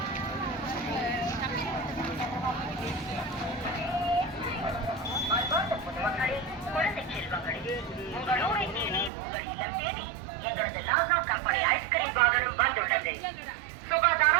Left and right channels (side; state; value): left; drops out; at 9.1 s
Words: குழந்தை செல்வங்களே, உங்கள் ஊரை தேடி, உங்கள் இல்லம் தேடி எங்களது லாசா கம்பெனி ஐஸ்கிரீம் வாகனம் வந்துள்ளது.